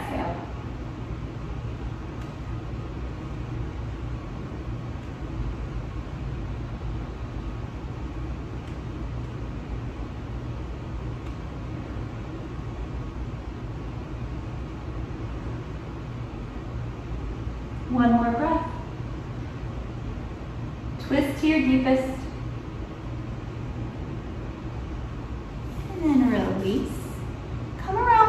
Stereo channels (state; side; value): identical; both; correlation 1.00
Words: One more breath. Twist to your deepest. And then release. Come